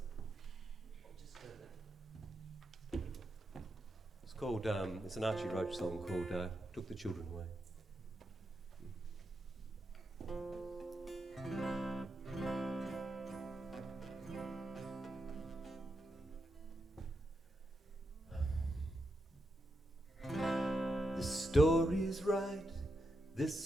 I'll just go there. It's called. It's an Archie Roach song called "Took the Children Away." The story's right, this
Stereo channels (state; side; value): normal; both; correlation 0.85